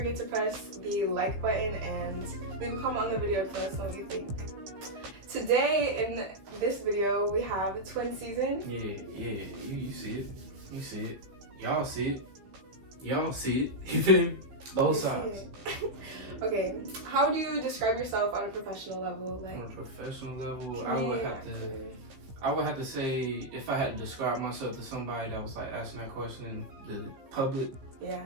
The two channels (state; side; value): late; left; 15 ms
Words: to press the like button and leave a comment on the video to let us know what you think. Today in this video we have Twinszn. Yeah. You see it. You see it. Y'all see it. Y'all see it. You feel me? Both sides. Okay, how do you describe yourself on a professional level? On a professional level, I would have to say, if I had to describe myself to somebody that was like asking that question in the public,